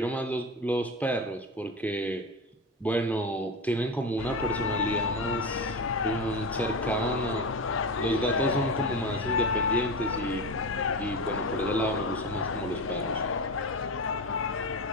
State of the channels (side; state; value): both; normal; correlation 0.22